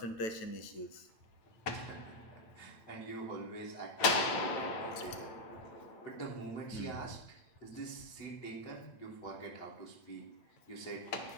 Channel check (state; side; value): late; right; 8.9 ms